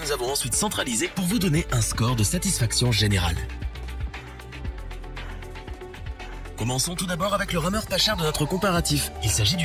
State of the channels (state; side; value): identical; both; correlation 1.00